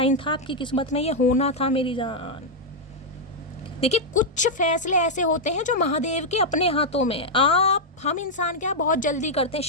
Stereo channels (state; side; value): normal; both; correlation -0.03